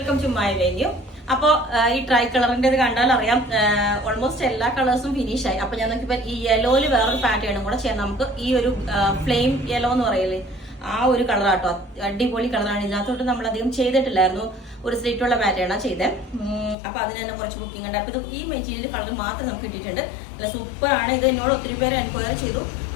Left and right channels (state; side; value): drops out; right; at 16.8 s